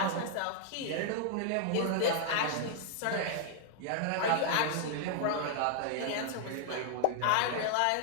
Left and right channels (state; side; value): different; both; correlation 0.00